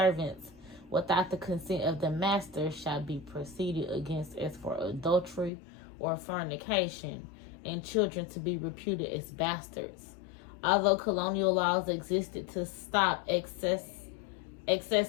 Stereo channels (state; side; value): drops out; right; at 5.5 s